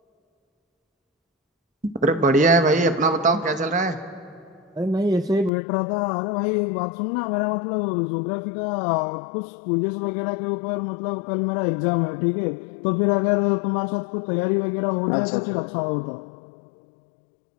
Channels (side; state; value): right; drops out; at 5.5 s